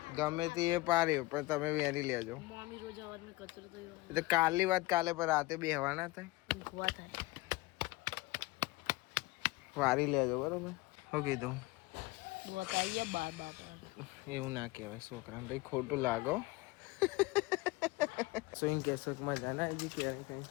ગમે તે એ પાર્યો પણ તમે વેની લેજો. કાલની વાત કાલે પર રાતે બેહવાના થાય, વારી લેજો બરોબર. શું કીધું? એવું ના કહેવાય છોકરા ભાઈ, ખોટું લાગો. સ્વિંગ કેસમાં જાના આવી કેરી કઈ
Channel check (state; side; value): quieter; right; 21.3 dB